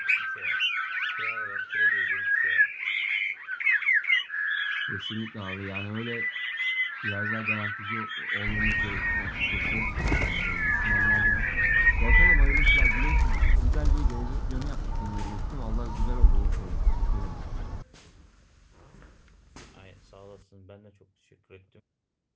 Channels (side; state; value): both; identical; correlation 1.00